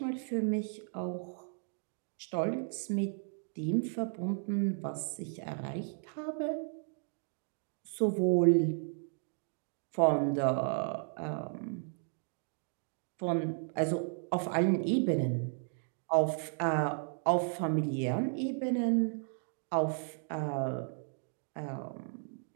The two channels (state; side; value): silent; left; 55 dB below the other